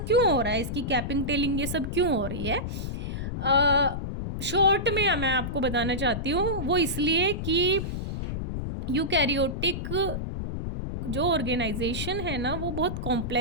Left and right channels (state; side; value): noise; left; rumble, 4 dB below the sound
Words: क्यों हो रहा है, इसकी कैपिंग, टेलिंग, ये सब क्यों हो रही है। शॉर्ट में मैं आपको बताना चाहती हूँ, वो इसलिए कि यूकैरियोटिक जो ऑर्गेनाइजेशन है ना, वो बहुत